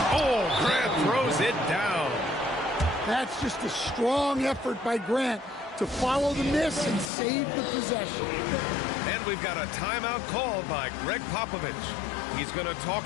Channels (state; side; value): drops out; right; at 7.1 s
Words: Oh, Grant throws it down. That's just a strong effort by Grant to follow the miss and save the possession. And we've got a timeout called by Greg Popovich. He's going to